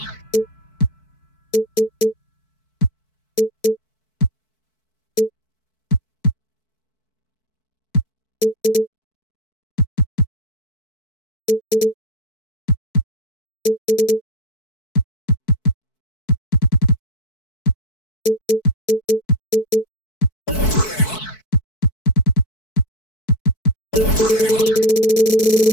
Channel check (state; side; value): late; right; 4.6 ms